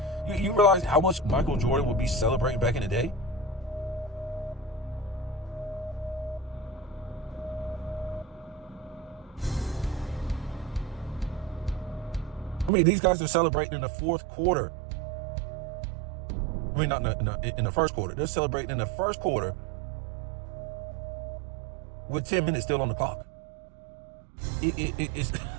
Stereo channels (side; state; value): left; drops out; at 12.7 s